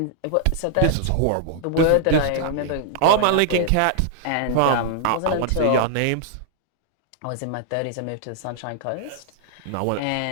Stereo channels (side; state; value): both; different; correlation -0.01